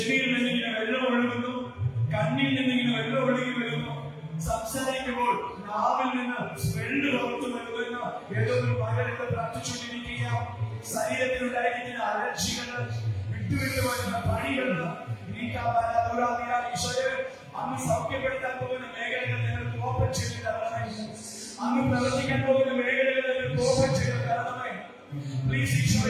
നിന്നിങ്ങനെ വെള്ളം ഒഴുകുന്നു, കണ്ണിൽ നിന്നിങ്ങനെ വെള്ളം ഒഴുകി വരുന്നു, സംസാരിക്കുമ്പോൾ നാവിൽ നിന്ന് സ്മെല്ല് പുറത്തു വരുന്ന ഏതോ ഒരു മകനെ പ്രാർത്ഥിച്ചുകൊണ്ടിരിക്കുക. ശരീരത്തിലുണ്ടായിരിക്കുന്ന അലർജികള്, വിട്ടുവിട്ടു വരുന്ന പണികള് അന്ന് സൗഖ്യപ്പെടുത്താൻ പോകുന്ന മേഖലകൾ നിങ്ങൾക്ക് ഓപ്പൺ ചെയ്ത് തരണമേ. അന്ന് പ്രവർത്തിക്കാൻ പോകുന്ന മേഖലകൾ നിങ്ങൾക്ക് ഓപ്പൺ ചെയ്ത് തരണമേ.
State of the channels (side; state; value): both; identical; correlation 1.00